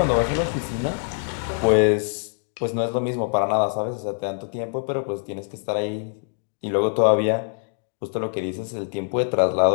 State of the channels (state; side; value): silent; right; digital silence